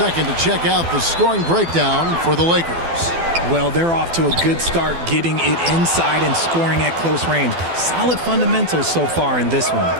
to check out the scoring breakdown for the Lakers. Well, they're off to a good start getting it inside and scoring at close range. Solid fundamentals so far in this one.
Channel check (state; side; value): late; left; 12 ms